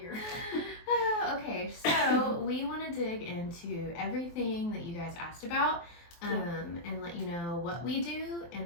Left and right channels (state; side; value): late; right; 23 ms